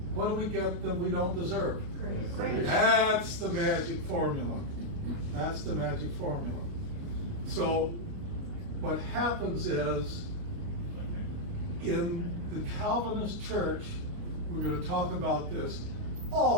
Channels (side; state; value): left; late; 29 ms